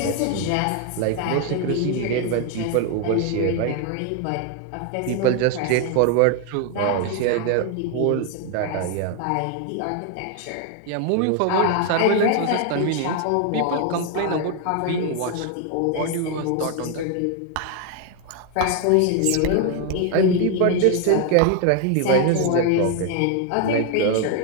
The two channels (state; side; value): different; both; correlation 0.01